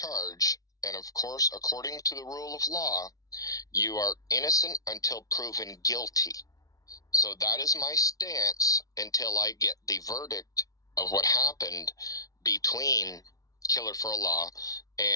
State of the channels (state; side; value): late; right; 0.18 ms